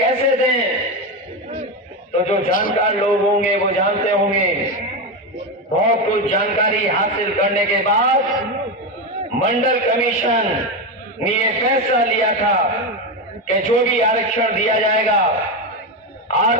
दें। तो जो जानकार लोग होंगे वो जानते होंगे। बहुत कुछ जानकारी हासिल करने के बाद मंडल कमीशन ने ये फैसला लिया था कि जो भी आरक्षण दिया जाएगा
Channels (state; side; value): normal; both; correlation 0.13